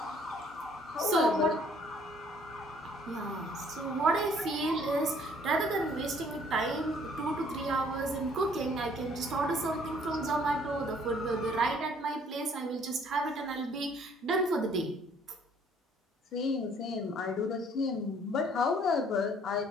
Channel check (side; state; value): both; normal; correlation 0.60